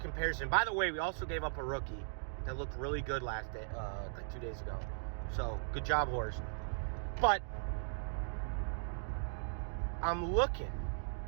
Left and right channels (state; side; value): silent; left; digital silence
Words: comparison. By the way, we also gave up a rookie that looked really good last day, like 2 days ago. So good job, Horst. But I'm looking.